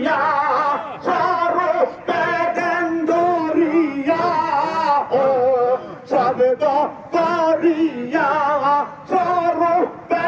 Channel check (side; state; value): both; identical; correlation 1.00